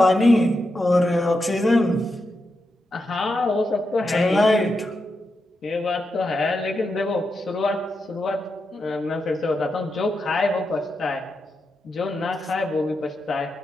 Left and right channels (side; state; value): both; normal; correlation 0.86